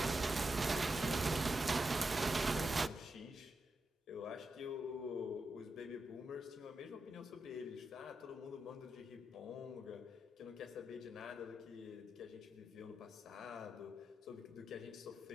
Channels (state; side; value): normal; both; correlation 0.87